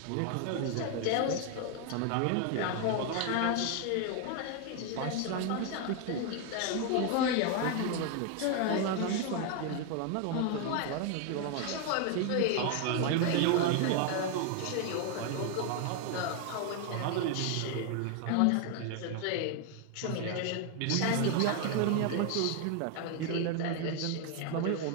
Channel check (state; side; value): different; both; correlation 0.01